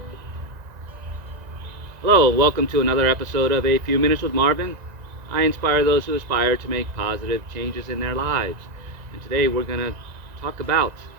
Hello, and welcome to another episode of A Few Minutes with Marvin. I inspire those who aspire to make positive changes in their lives. And today we're going to talk about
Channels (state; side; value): late; left; 1.9 ms